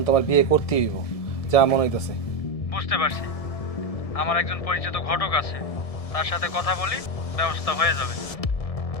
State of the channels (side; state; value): right; late; 1.7 ms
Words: তো আমার বিয়ে করতেই হইব, যা মনে হইতেছে। বুঝতে পারছি, আমার একজন পরিচিত ঘটক আছে, তার সাথে কথা বলি, ব্যবস্থা হয়ে যাবে।